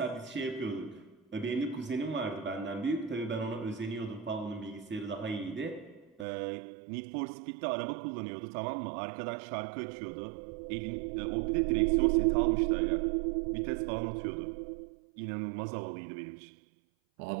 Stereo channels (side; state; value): left; drops out; at 6.2 s